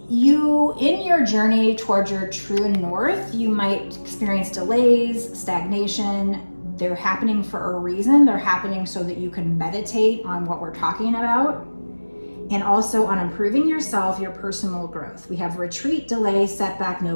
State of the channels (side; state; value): both; inverted; correlation -1.00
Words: you, in your journey towards your true north, you might experience delays, stagnation. They're happening for a reason. They're happening so that you can meditate on what we're talking about, and also on improving yourself, your personal growth. We have retreat, delay, setback, no